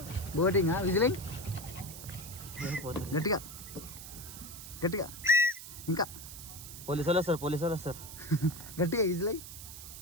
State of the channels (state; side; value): noise; right; hiss, 12 dB below the sound